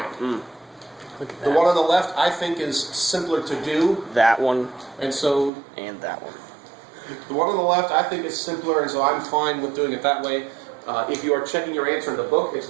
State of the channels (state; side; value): drops out; left; at 5.5 s